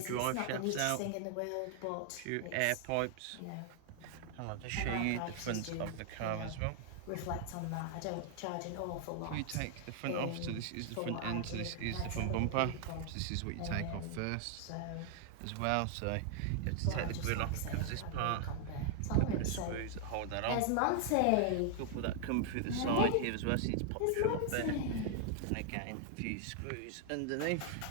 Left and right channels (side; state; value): both; different; correlation 0.00